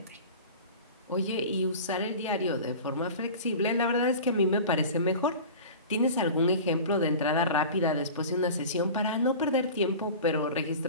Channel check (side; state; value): both; inverted; correlation -0.36